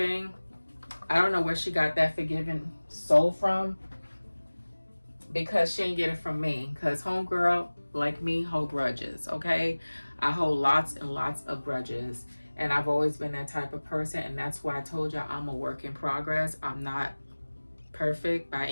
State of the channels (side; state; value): both; inverted; correlation -1.00